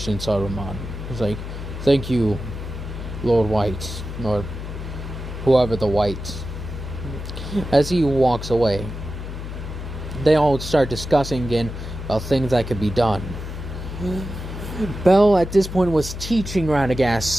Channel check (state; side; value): noise; left; hum, 8 dB below the sound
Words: Saruman. He's like, thank you, Lord White, or whoever the White. As he walks away, they all start discussing again about things that could be done. Bell, at this point, was teaching Radagast